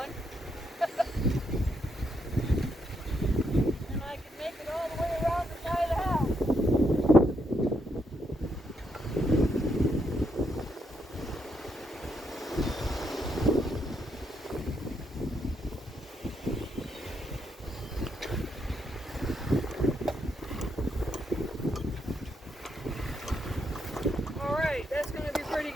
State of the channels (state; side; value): normal; both; correlation 0.78